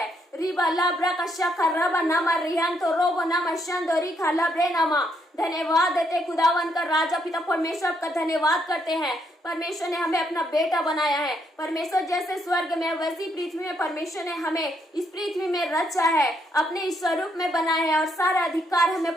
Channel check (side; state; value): both; normal; correlation 0.74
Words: रिबा लाब्रा का शखा रबा नामा रिहान तो रोबो नामा शंदो रिखा लाब्रे नामा। धन्यवाद देते खुदावन का राजा पिता परमेश्वर का धन्यवाद करते हैं। परमेश्वर ने हमें अपना बेटा बनाया है। परमेश्वर जैसे स्वर्ग में वैसी पृथ्वी में परमेश्वर ने हमें इस पृथ्वी में रचा है, अपने स्वरूप में बनाया है, और सारा अधिकार